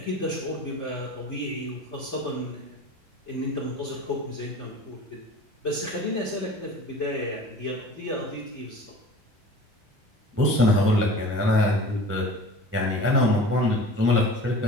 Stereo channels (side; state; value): both; normal; correlation 0.40